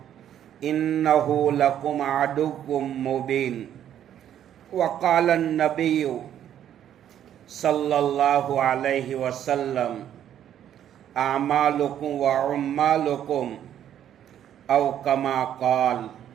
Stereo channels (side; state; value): left; quieter; 10.4 dB